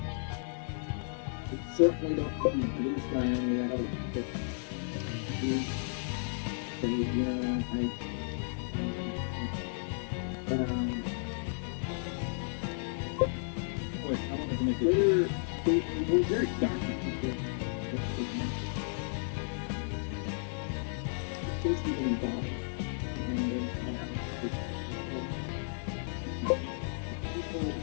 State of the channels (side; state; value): right; silent; 55 dB below the other